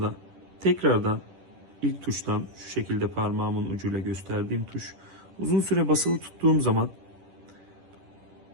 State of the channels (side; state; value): left; late; 10 ms